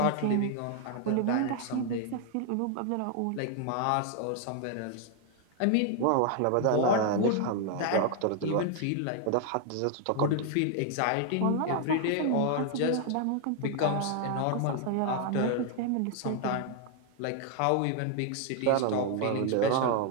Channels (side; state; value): both; different; correlation 0.00